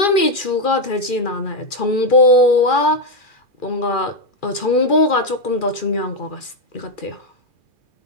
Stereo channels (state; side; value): late; right; 2.4 ms